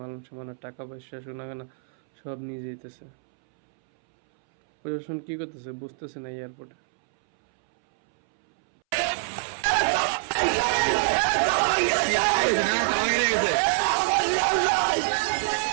মানুষ মানে টাকা পয়সা সোনাগানা সব নিয়ে যেতেছে। প্রশাসন কি করতেছে বুঝতেছে না এয়ারপোর্টে।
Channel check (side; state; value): left; silent; 61 dB below the other